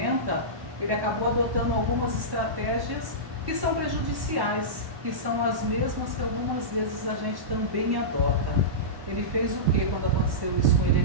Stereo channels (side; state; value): left; late; 1.1 ms